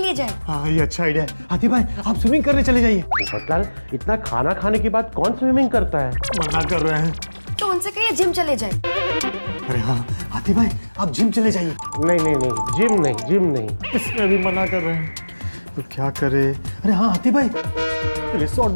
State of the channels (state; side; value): inverted; both; correlation -1.00